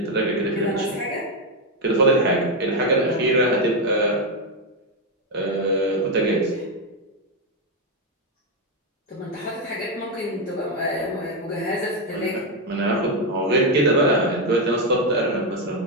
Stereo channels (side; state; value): both; normal; correlation 0.05